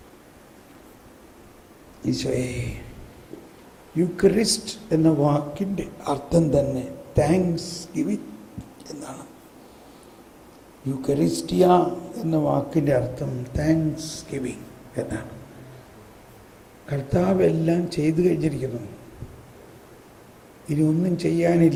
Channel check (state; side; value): identical; both; correlation 1.00